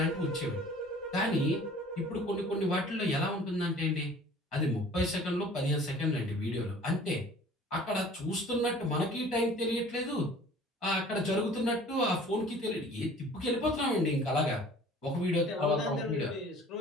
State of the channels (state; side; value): normal; both; correlation 0.49